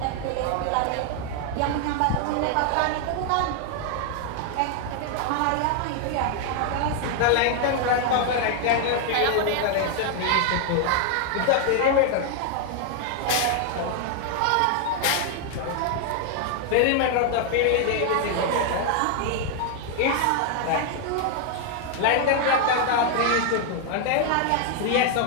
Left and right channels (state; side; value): different; both; correlation 0.00